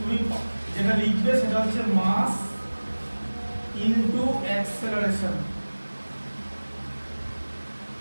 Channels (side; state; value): both; inverted; correlation -1.00